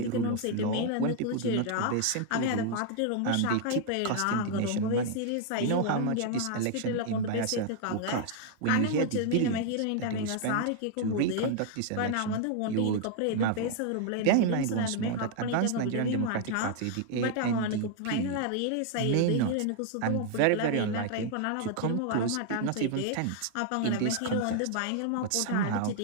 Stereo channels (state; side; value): different; both; correlation 0.00